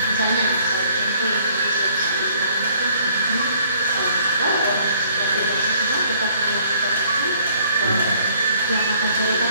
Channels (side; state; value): both; inverted; correlation -0.61